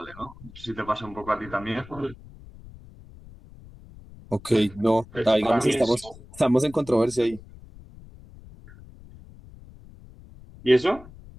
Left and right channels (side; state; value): left; noise; rumble, 20 dB below the sound